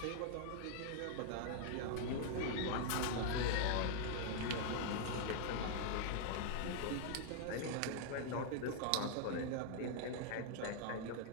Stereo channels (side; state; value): both; different; correlation 0.00